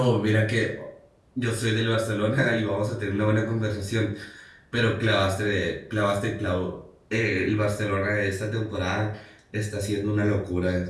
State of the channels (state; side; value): identical; both; correlation 1.00